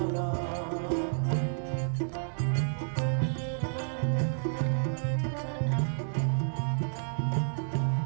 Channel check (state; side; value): silent; left; digital silence